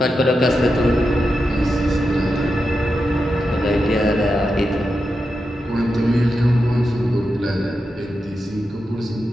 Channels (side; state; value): both; normal; correlation 0.88